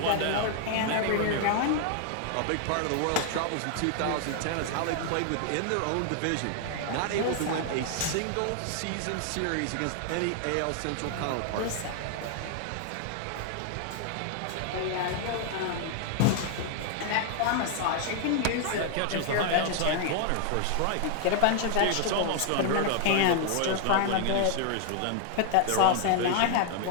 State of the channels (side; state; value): both; different; correlation 0.00